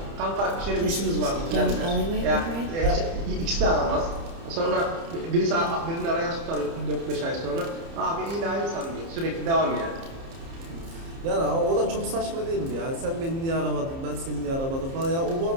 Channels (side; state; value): left; late; 30 ms